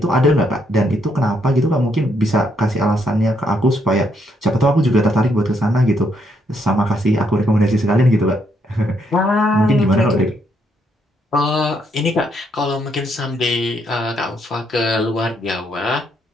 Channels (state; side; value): normal; both; correlation 0.74